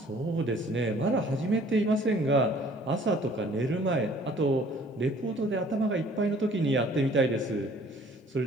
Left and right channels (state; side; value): normal; both; correlation 0.55